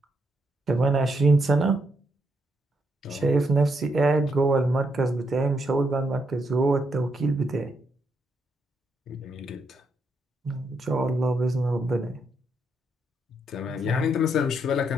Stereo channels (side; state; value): both; normal; correlation 0.78